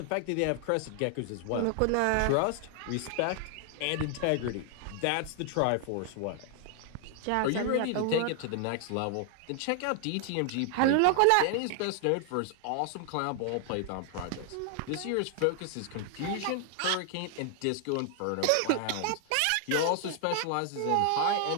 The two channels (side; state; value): both; different; correlation 0.00